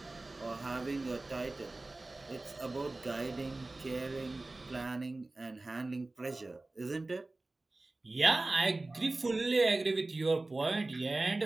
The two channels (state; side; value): quieter; left; 3.1 dB